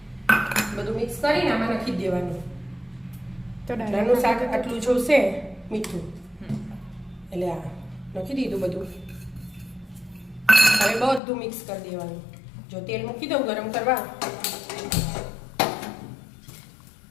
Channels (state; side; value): drops out; right; at 11.2 s